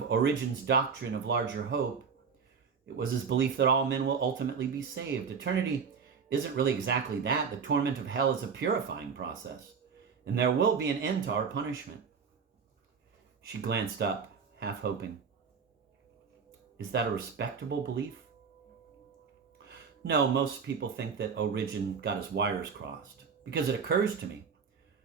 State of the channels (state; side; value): quieter; left; 6.0 dB